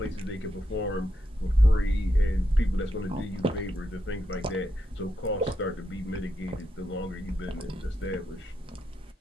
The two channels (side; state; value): both; normal; correlation 0.83